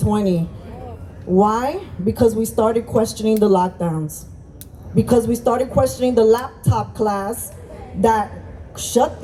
Why? Because we started questioning the lockdowns. Because we started questioning the laptop class that shut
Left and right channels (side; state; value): both; identical; correlation 1.00